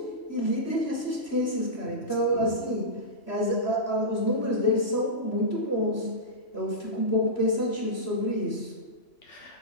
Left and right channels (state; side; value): late; right; 3.0 ms